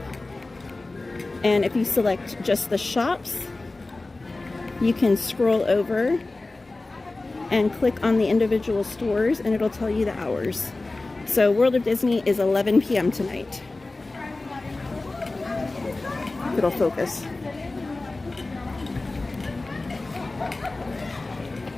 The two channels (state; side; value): quieter; right; 3.2 dB